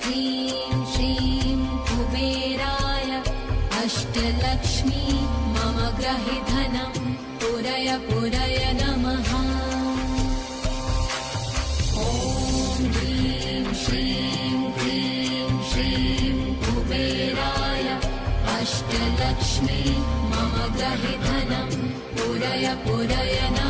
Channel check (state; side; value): identical; both; correlation 1.00